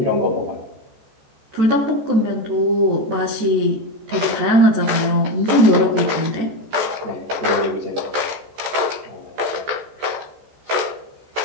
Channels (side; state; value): left; late; 14 ms